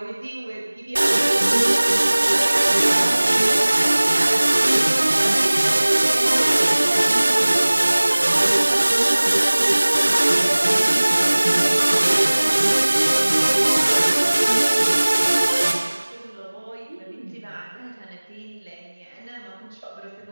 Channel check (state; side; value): inverted; both; correlation -1.00